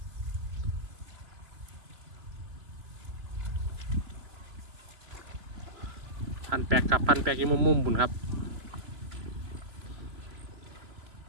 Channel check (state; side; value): late; left; 3.0 ms